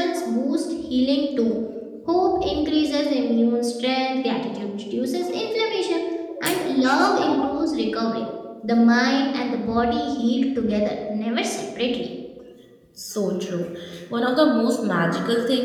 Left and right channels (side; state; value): both; identical; correlation 1.00